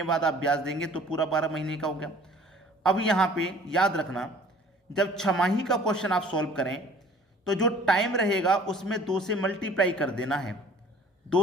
बाद आप ब्याज देंगे तो पूरा 12 महीने का हो गया। अब यहाँ पे याद रखना, जब छमाही का क्वेश्चन आप सॉल्व करें तो जो टाइम रहेगा उसमें 2 से मल्टीप्लाई कर देना है।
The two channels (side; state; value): both; normal; correlation 0.51